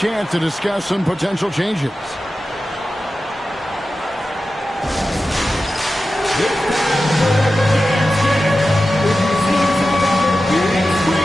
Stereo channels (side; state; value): both; normal; correlation 0.93